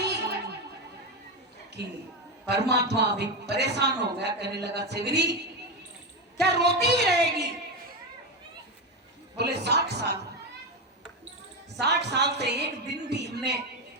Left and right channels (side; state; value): both; normal; correlation 0.13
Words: कि परमात्मा भी परेशान हो गया, कहने लगा सेवरी क्या रोती ही रहेगी। बोले 60 साल से एक दिन भी हमने